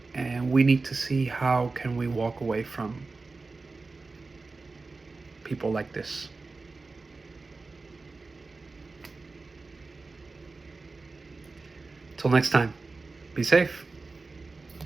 And we need to see how can we walk away from people like this. Till next time, be safe.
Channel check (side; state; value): left; quieter; 3.8 dB